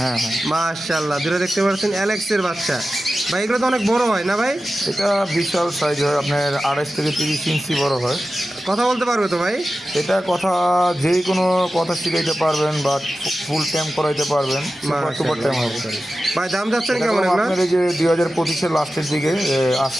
হ্যাঁ, মাশাল্লাহ, দুটো দেখতে পাচ্ছেন অ্যালেক্সের বাচ্চা। ভাই এগুলো তো অনেক বড় হয় না ভাই? এটা বিশাল সাইজ হয়, আপনার 28 থেকে 30 ইঞ্চি বড় হয়। কথা বলতে পারবে তো ভাই? এটা কথা যে কোনো কথা শিখাইতে পারবেন বা ফুল টাইম করাইতে পারবেন, সুপার টুপার টাইম হবে। ভাই দাম যাচ্ছেন এটা কেমন এগুলো? আপনার এই যে 2025-এর লাস্টের দিকে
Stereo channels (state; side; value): normal; both; correlation 0.94